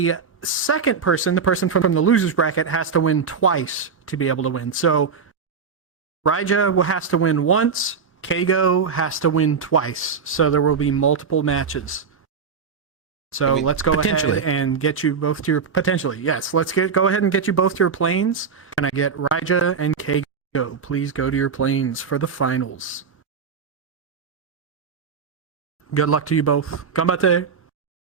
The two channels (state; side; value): quieter; left; 5.8 dB